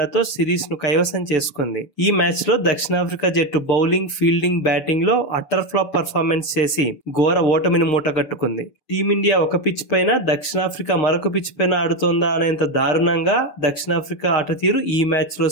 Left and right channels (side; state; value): right; late; 6.9 ms